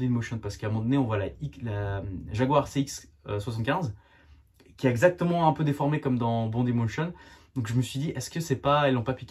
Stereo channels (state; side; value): identical; both; correlation 1.00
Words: in Motion. Parce qu'à un moment donné, on voit la Jaguar CX-75 qui est exactement un peu déformée comme dans Bond in Motion. Donc je me suis dit, est-ce que c'est pas, ils l'ont pas